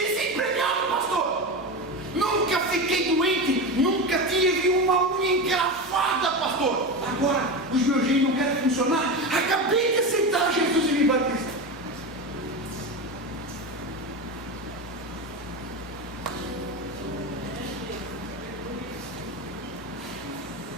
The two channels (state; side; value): normal; both; correlation 0.21